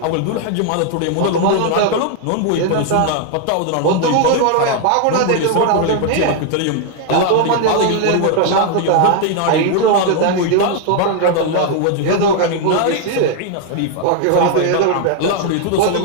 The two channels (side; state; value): both; different; correlation 0.00